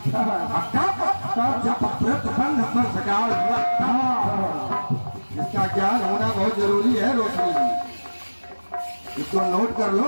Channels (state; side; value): inverted; both; correlation -1.00